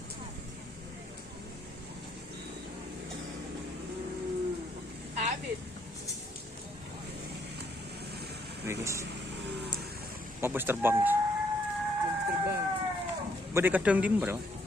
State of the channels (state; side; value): normal; both; correlation 0.70